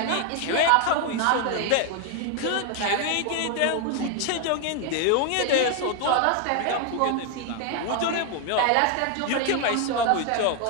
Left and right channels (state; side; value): different; both; correlation 0.01